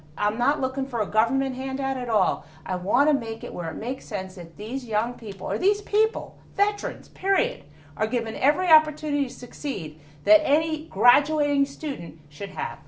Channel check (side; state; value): both; identical; correlation 1.00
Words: I'm not looking for a government handout at all. I want to make it where it makes sense that these young people, or these people, veterans, period, are given every opportunity to succeed that any graduating student should have.